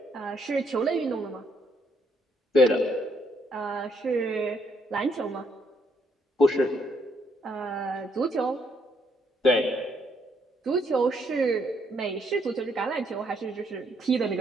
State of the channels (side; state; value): both; normal; correlation 0.72